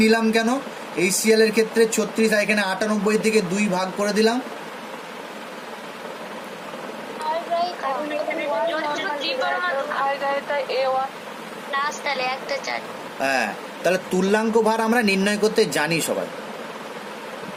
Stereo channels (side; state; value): both; identical; correlation 1.00